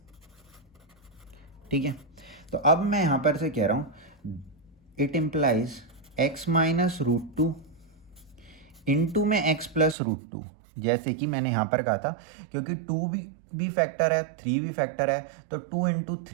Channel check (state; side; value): drops out; left; at 10.0 s